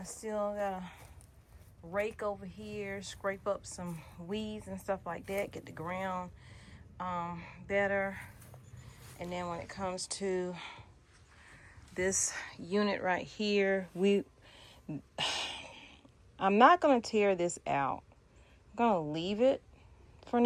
still gotta rake over here, scrape up some weeds and stuff like that, get the ground better. And then when it comes to this unit right here, I'm not gonna tear this out. I'm gonna leave it for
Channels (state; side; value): identical; both; correlation 1.00